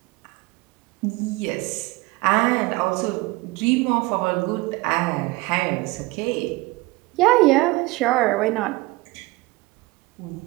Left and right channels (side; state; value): left; quieter; 21.8 dB